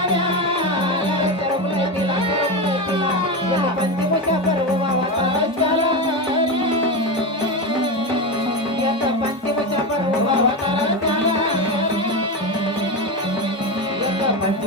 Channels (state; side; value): normal; both; correlation 0.17